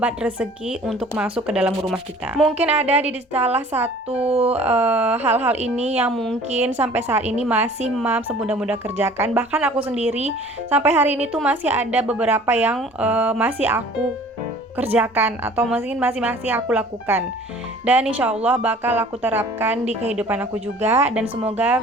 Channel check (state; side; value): normal; both; correlation 0.49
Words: rezeki untuk masuk ke dalam rumah kita. Mungkin ada di salah satu hal-hal ini yang mungkin sampai saat ini masih mam sebunda-bunda kerjakan. Bahkan aku sendiri sampai hari ini tuh masih ada beberapa yang masih aku kerjakan atau mungkin masih aku lakukan, dan insya Allah bakal aku terapkan di kehidupan aku juga, dan semoga